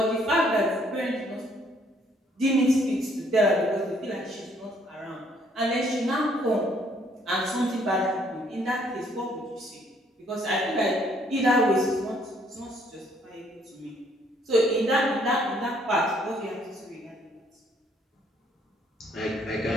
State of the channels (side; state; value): both; normal; correlation 0.65